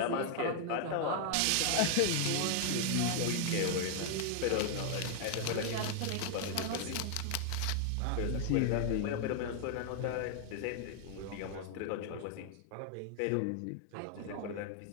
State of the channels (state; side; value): different; both; correlation 0.00